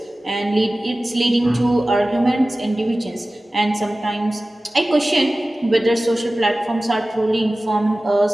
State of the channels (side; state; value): both; normal; correlation 0.96